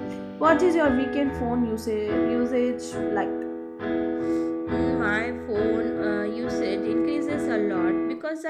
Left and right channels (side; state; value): both; identical; correlation 1.00